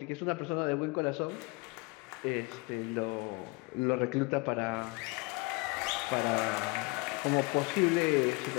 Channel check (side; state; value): right; quieter; 26.9 dB